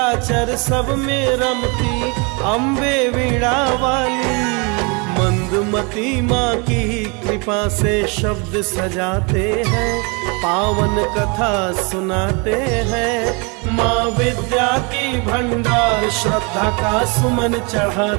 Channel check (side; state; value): left; quieter; 31.8 dB